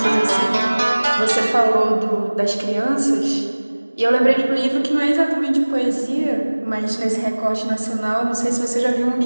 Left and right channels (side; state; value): both; inverted; correlation -1.00